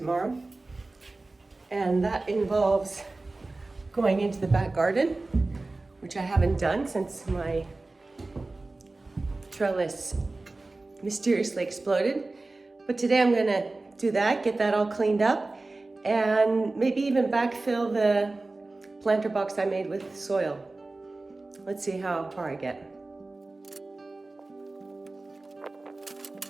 And that involves going into the back garden, which I haven't done since my trellis mysteriously exploded. But today I'm gonna do that, get that all cleaned up, and maybe even backfill the planter box I made with soil. Let's see how far I get.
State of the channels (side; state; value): left; quieter; 3.2 dB